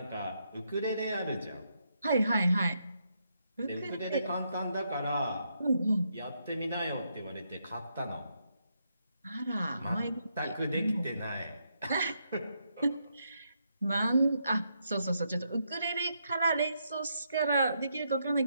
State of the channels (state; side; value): inverted; both; correlation -0.79